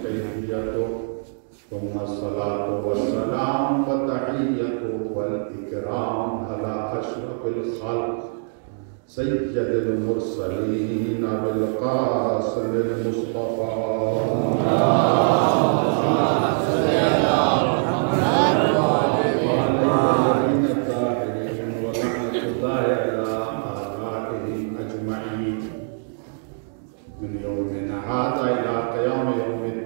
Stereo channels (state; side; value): silent; left; digital silence